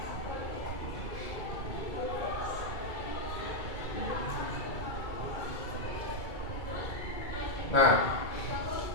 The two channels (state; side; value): late; right; 2.3 ms